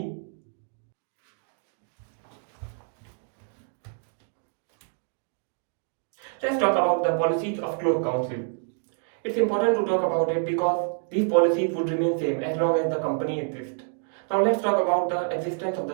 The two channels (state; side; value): silent; left; 60 dB below the other